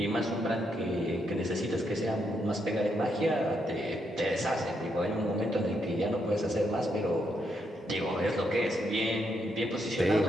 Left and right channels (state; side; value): normal; both; correlation 0.79